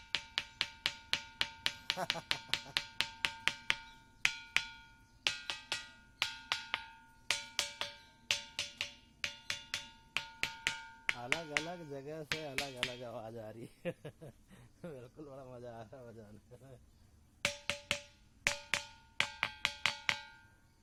अलग अलग जगह से अलग अलग आवाज आ रही है। बिल्कुल, बड़ा मजा आ रहा है बजाने में।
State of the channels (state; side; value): identical; both; correlation 1.00